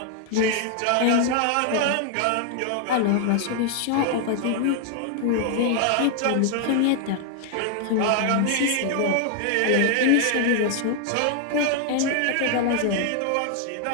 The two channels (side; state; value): both; different; correlation 0.00